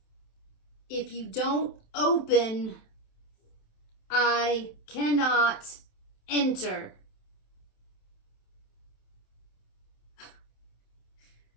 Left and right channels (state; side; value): late; right; 27 ms